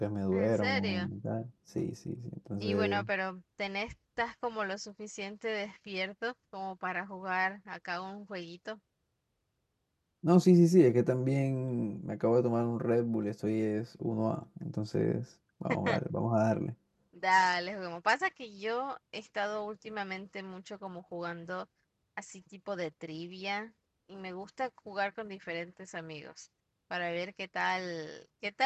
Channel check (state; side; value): identical; both; correlation 1.00